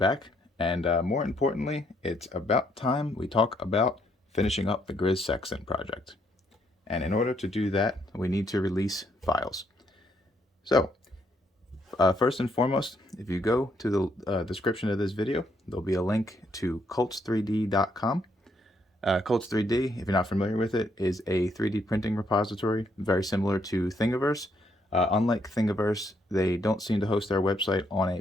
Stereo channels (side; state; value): both; normal; correlation 0.72